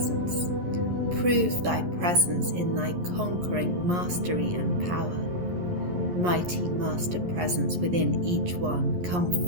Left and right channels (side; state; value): left; late; 11 ms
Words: Prove thy presence in thy conquering mastery and power. Mighty master presence within each one, come